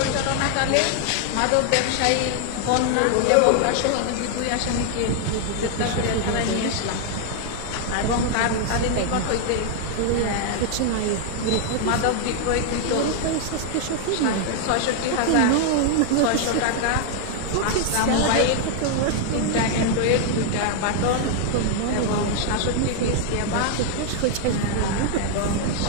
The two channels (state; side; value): different; both; correlation 0.00